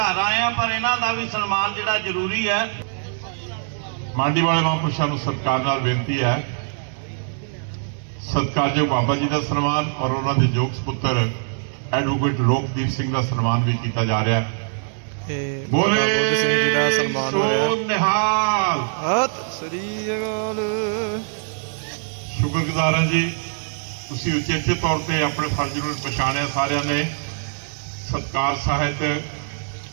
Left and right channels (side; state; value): left; silent; digital silence